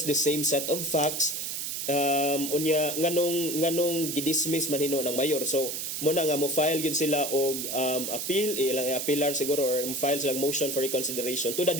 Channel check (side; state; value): right; noise; hiss, 4 dB below the sound